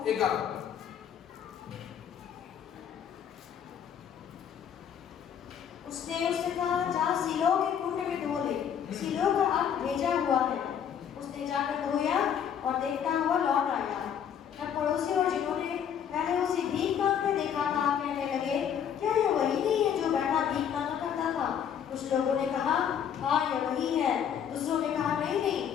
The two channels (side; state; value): right; quieter; 8.5 dB